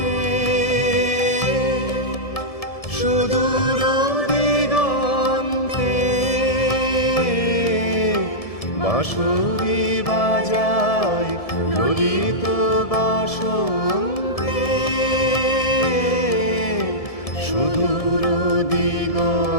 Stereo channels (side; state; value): right; late; 1.7 ms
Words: সুদূর দিগন্তে বাঁশরি বাজাই ললিত বসন্তে, সুদূর